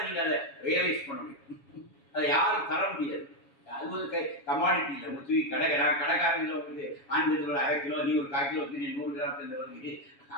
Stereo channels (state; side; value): late; right; 7.2 ms